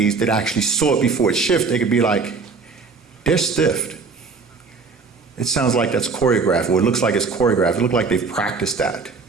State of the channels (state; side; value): quieter; left; 4.6 dB